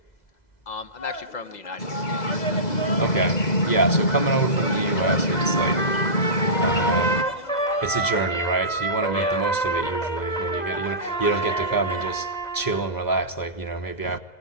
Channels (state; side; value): late; right; 2.0 ms